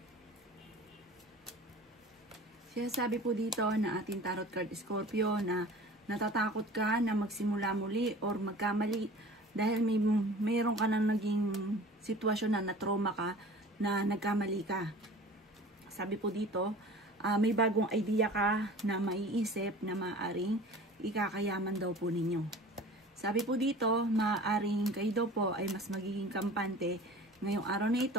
Sinasabi po dito na ating tarot card Scorpio na natatakot ka na magsimula muli or magkamali dahil mayroon ka na naging sitwasyon na na-trauma ka na nagkamali ka. Sabi po dito, may bagong idea ka na maiisip na maaaring ikakayaman daw po ninyo. Sabi po dito, maaaring kayo daw po ay mas magiging kampante ngayong araw na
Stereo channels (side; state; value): both; normal; correlation 0.42